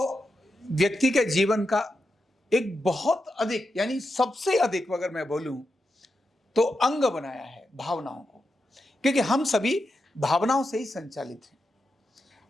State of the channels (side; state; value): both; normal; correlation 0.87